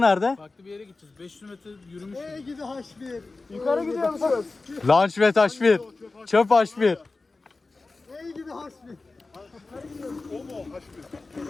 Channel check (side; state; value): right; quieter; 3.6 dB